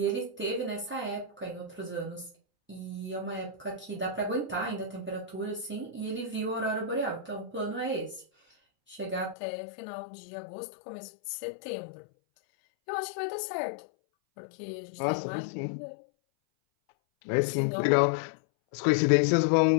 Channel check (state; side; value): drops out; right; at 9.3 s